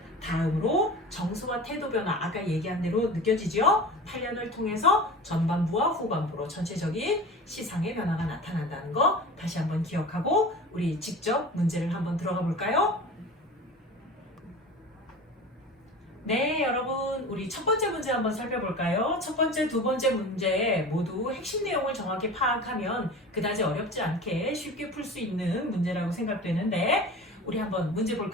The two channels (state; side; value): normal; both; correlation 0.35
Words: 다음으로 정서와 태도 변화, 아까 얘기한 대로 느껴지죠? 단련을 통해서 전반부와 후반부로 전체적인 시상의 변화가 나타난다는 거 다시 한번 기억하고 우리 직접 문제를 한번 들어가 볼까요? 네, 여러분 우리 첫 번째 문제 한번 살펴볼까요? 첫 번째, 두 번째 문제 모두 핵심 내용을 정확히 파악하면 그다지 어렵지 않게 쉽게 풀 수 있는 문제라고 생각되는데 우리 한번 문제